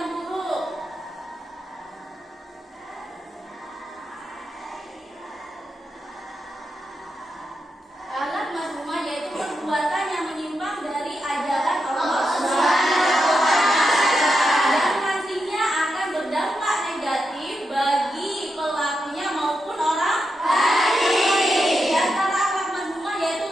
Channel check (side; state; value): both; normal; correlation 0.86